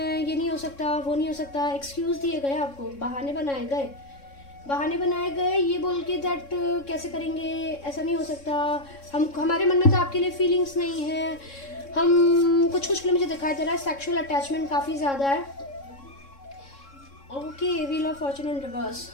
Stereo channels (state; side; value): late; right; 3.6 ms